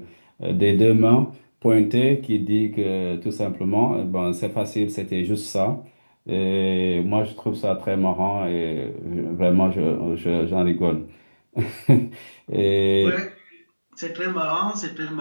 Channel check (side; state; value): both; inverted; correlation -1.00